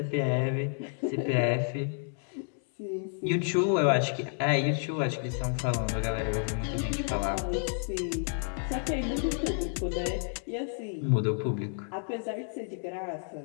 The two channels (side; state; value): right; silent; 57 dB below the other